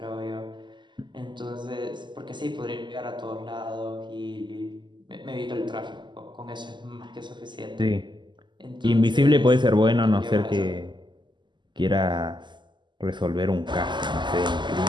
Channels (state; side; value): late; left; 0.22 ms